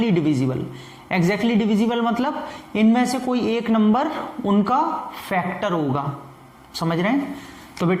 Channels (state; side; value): identical; both; correlation 1.00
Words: डिविजिबल। एग्जैक्टली डिविजिबल मतलब इनमें से कोई एक नंबर उनका फैक्टर होगा, समझ रहे हैं। तो